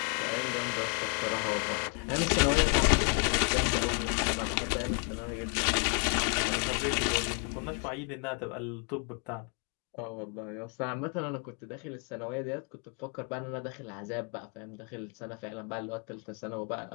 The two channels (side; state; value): right; quieter; 39.2 dB